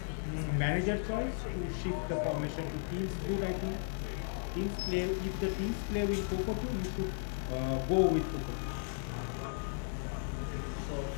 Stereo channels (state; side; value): silent; right; digital silence